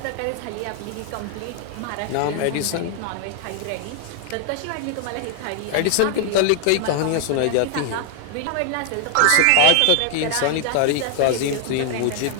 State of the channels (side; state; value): both; different; correlation 0.00